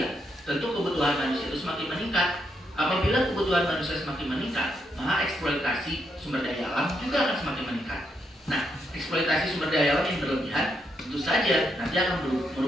tentu kebutuhan manusia itu semakin meningkat. Apabila kebutuhan manusia semakin meningkat, maka eksploitasi sumber daya alam juga akan semakin meningkat. Nah, eksploitasi sumber daya alam yang berlebihan tentu saja nanti akan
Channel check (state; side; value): normal; both; correlation 0.79